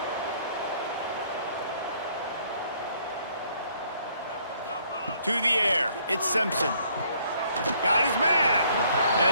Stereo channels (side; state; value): both; inverted; correlation -0.64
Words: To the air. It's Simpson. Got his man.